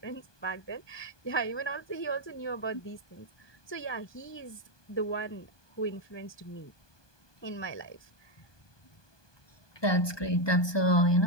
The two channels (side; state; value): right; late; 1.2 ms